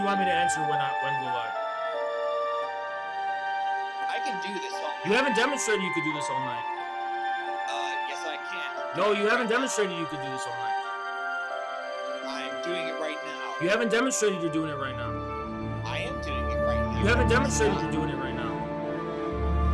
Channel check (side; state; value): both; identical; correlation 1.00